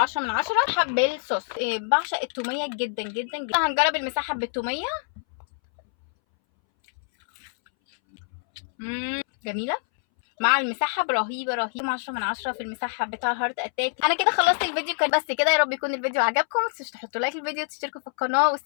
من 10. حب الصوص، بعشق التوميه جدا جدا جدا. هنجرب المسحب بالتوميه. جميله مع المسحب، رهيبه رهيبه، 10 من 10 في المسحب بتاع هارت اتاك. انا كده خلصت الفيديو، كان بس كده. يا رب يكون الفيديو عجبكم، متنسوش تحطوا لايك للفيديو وتشتركوا في القناه،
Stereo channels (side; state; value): right; silent; 61 dB below the other